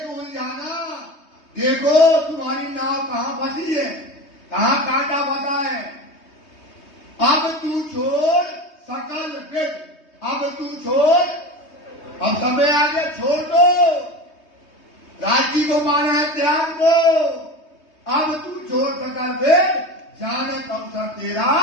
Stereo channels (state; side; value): late; right; 3.2 ms